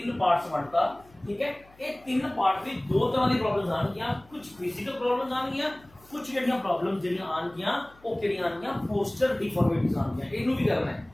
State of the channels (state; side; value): noise; left; hum, 27 dB below the sound